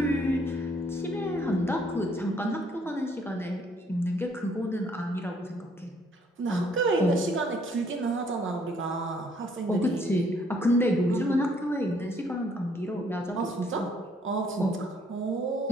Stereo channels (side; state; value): both; normal; correlation 0.65